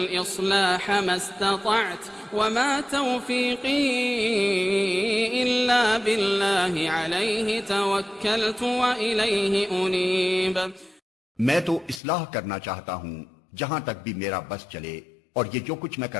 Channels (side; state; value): right; drops out; at 12.0 s